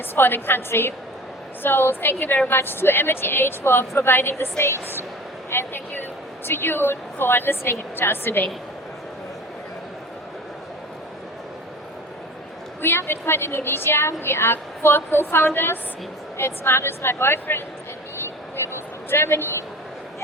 for the country. So thank you very much to AmityAge for providing the stage, and thank you to you for listening to us today. We are Bitcoin Indonesia. We are 4 co-founders. It's Marius, my boyfriend, and me. We moved from Germany.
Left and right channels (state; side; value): normal; both; correlation 0.38